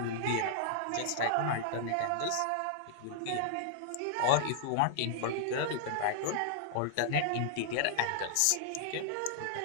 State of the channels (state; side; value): different; both; correlation -0.01